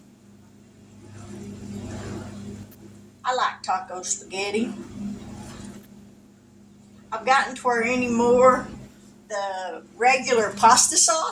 I like taco spaghetti. I've gotten to where anymore the regular pasta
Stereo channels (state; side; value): identical; both; correlation 1.00